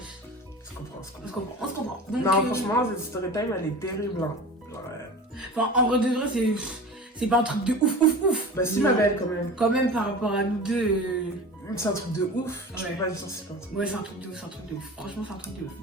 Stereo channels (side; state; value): both; normal; correlation 0.35